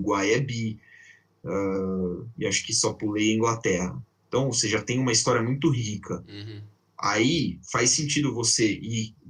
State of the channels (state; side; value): identical; both; correlation 1.00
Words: é bi, e acho que só pulei a Inglaterra. Então, você já tem uma história muito rica. Uhum. Aí faz sentido você ir